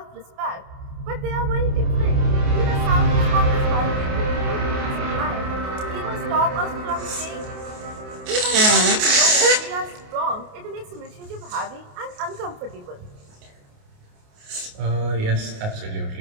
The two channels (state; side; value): late; left; 28 ms